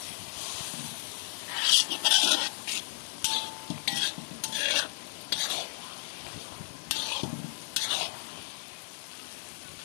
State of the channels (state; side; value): silent; right; digital silence